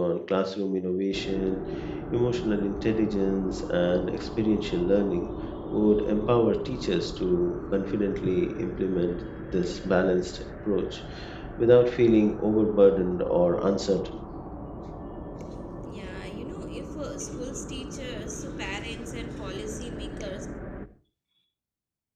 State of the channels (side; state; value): both; identical; correlation 1.00